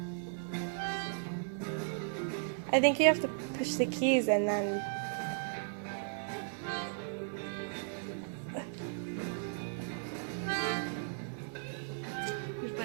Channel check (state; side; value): silent; left; digital silence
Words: I think you have to push the keys and then...